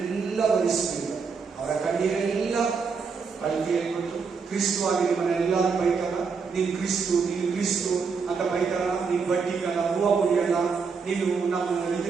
ಒರೆಸುವುದು, ಅವರ ಕಣ್ಣೀರೆಲ್ಲ ಅಳತೆಯಲ್ಲಿ ಕೊಟ್ಟು. ಕ್ರಿಸ್ತವಾಗಿ ನಿಮ್ಮನ್ನೆಲ್ಲರೂ ಬೈತಾರ, ನೀನು ಕ್ರಿಸ್ತು ಅಂತ ಬೈತಾರ. ನೀನು ಬಡ್ಡಿಗಲ್ಲ, ಹೂವು ಮುಡಿಯಲ್ಲ, ನೀನು ನಮ್ಮ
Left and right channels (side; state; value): left; quieter; 5.3 dB